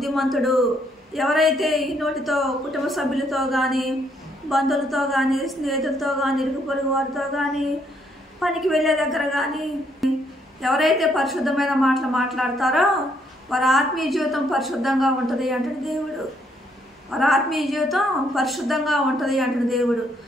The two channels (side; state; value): both; normal; correlation 0.71